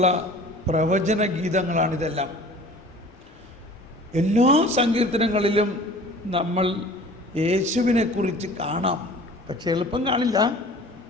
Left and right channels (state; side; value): normal; both; correlation 0.45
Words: പ്രവചന ഗീതങ്ങളാണിതെല്ലാം. എല്ലാ സങ്കീർത്തനങ്ങളിലും നമ്മൾ യേശുവിനെക്കുറിച്ച് കാണാം. പക്ഷെ എളുപ്പം കാണില്ല,